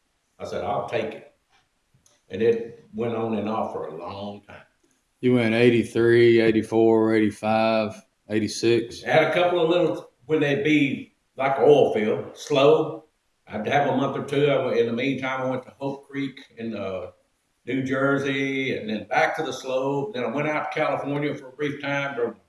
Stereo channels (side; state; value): both; identical; correlation 1.00